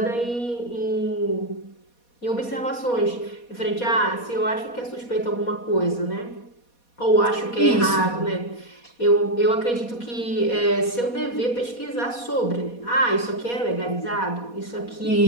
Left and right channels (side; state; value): right; late; 4.2 ms